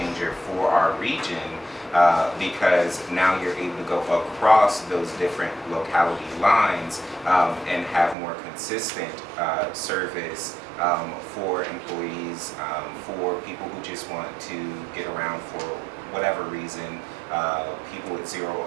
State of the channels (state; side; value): drops out; left; at 8.2 s